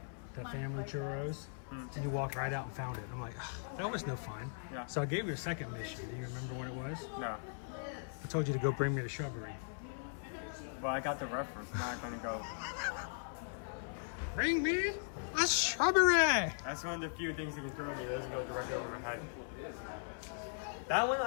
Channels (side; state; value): right; silent; 52 dB below the other